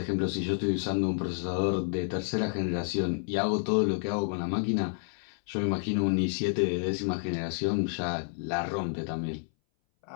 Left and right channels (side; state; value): right; silent; 58 dB below the other